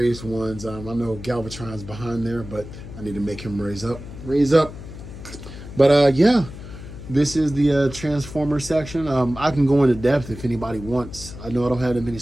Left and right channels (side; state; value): left; noise; hum, 13 dB below the sound